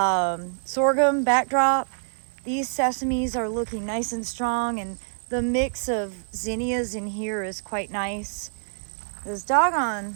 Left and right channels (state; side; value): silent; left; digital silence